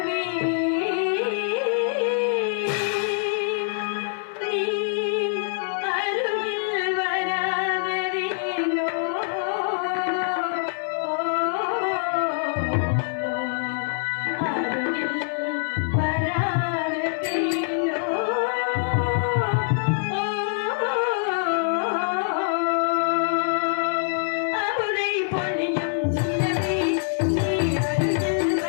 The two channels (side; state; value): right; silent; 57 dB below the other